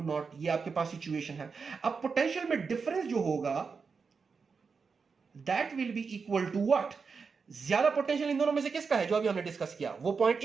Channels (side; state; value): left; quieter; 5.2 dB